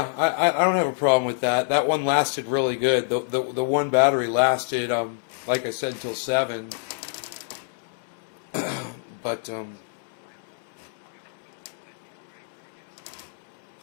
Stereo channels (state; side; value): silent; right; digital silence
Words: I don't have a problem with that. That one lasted really good. The one battery lasted, like I said, until 7. But